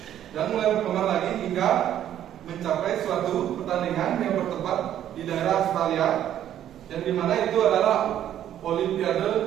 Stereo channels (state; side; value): quieter; left; 11.1 dB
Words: dan mulai berkembang lagi hingga mencapai suatu pertandingan yang bertempat di daerah Australia, yang dimana itu adalah